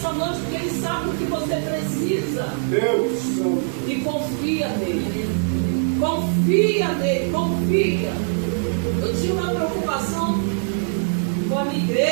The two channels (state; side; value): silent; left; digital silence